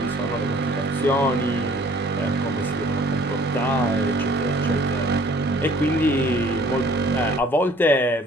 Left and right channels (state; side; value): normal; both; correlation 0.54